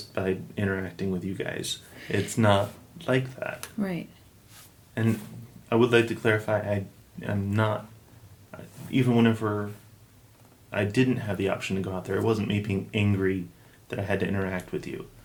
by interacting with you guys. It's not like that. Right. And I would like to clarify, I'm not, even whenever I didn't have the option to go out there, it wasn't me being angry that I had to interact with you.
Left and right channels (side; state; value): both; identical; correlation 1.00